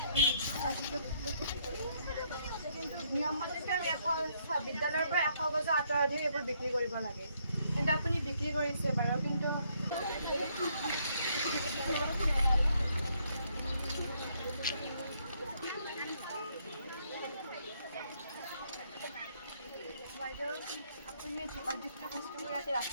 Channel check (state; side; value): inverted; both; correlation -0.71